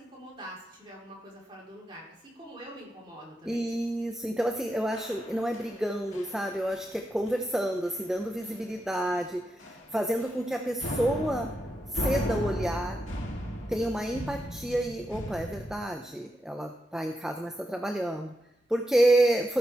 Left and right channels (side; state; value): both; normal; correlation 0.85